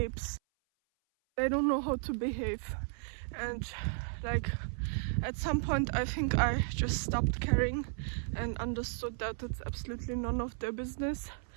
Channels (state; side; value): silent; left; 55 dB below the other